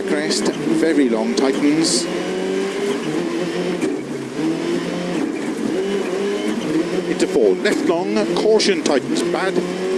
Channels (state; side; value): identical; both; correlation 1.00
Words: crest, very long tightens, into 4 left long, caution, tightens bad,